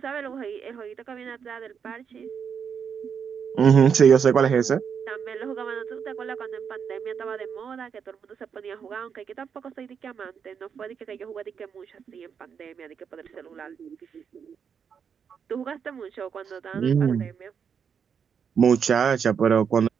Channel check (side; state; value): left; quieter; 7.0 dB